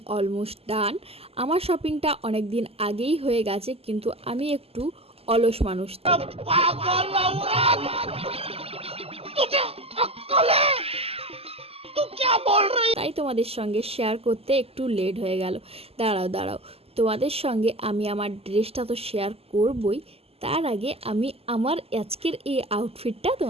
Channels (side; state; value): left; late; 0.29 ms